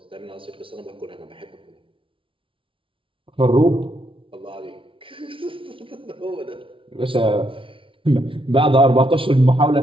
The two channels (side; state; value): left; late; 0.25 ms